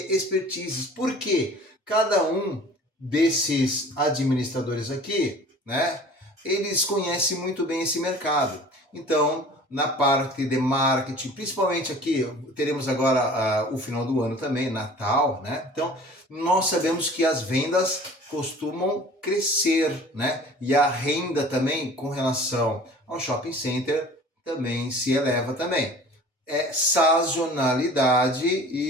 expertises. Porque cada um desses administradores aqui, né, eles conhecem muito bem esse mercado. Então, na parte de marketing, principalmente aqui, teremos agora o final do ano também, Natal, né? Então, nós sabemos que as vendas costumam crescer, né? E a renda também, com relação ao shopping center, também se eleva também. É sazonalidade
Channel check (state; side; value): normal; both; correlation 0.45